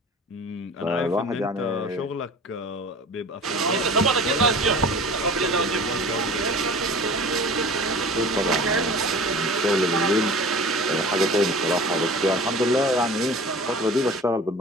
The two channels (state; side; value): normal; both; correlation 0.41